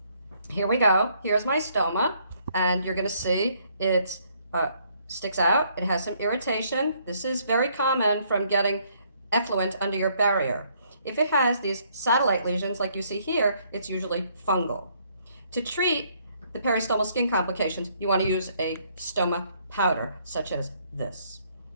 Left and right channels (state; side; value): inverted; both; correlation -0.67